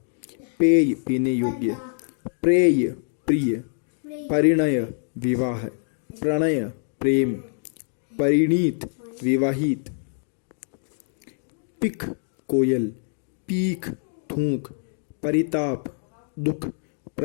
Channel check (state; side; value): silent; right; digital silence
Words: पेय पीने योग्य, प्रेय प्रिय, परिणय विवाह, प्रणय प्रेम, परिणीत विवाहित, पिख कोयल, पीख थूक, परिताप दुख,